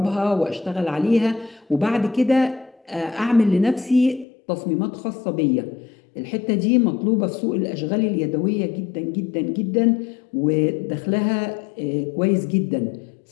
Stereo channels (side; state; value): right; drops out; at 4.2 s